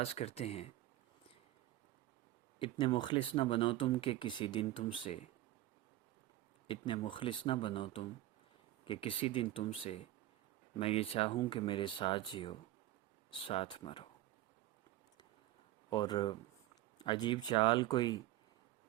کرتے ہیں۔ اتنے مخلص نہ بنو تم کہ کسی دن تم سے، اتنے مخلص نہ بنو تم کہ کسی دن تم سے میں یہ چاہوں کہ میرے ساتھ جیو ساتھ مرو۔ اور عجیب چال کوئی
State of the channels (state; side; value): quieter; left; 15.1 dB